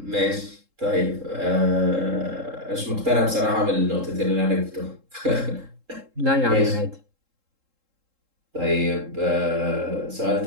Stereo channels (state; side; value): late; left; 3.7 ms